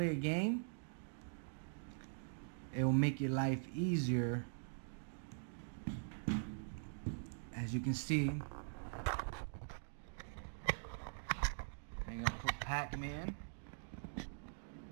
a game, it will make your life easier. As you can see, I'm gonna put Pac-Man.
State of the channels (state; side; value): silent; left; digital silence